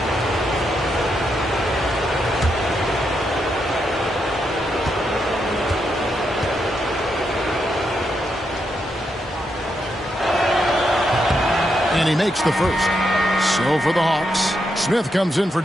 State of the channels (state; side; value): normal; both; correlation 0.81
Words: And he makes the first. So for the Hawks, Smith comes in for